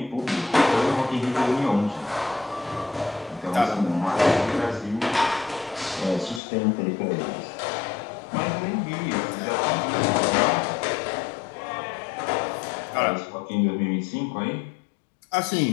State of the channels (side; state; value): right; drops out; at 6.4 s